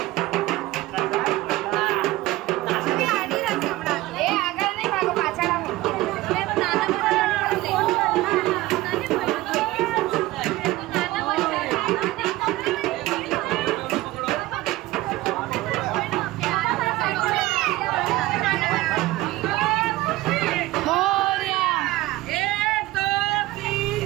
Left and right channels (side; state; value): left; quieter; 17.8 dB